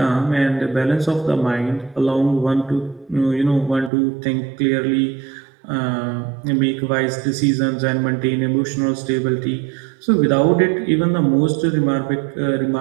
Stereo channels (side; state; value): left; drops out; at 3.9 s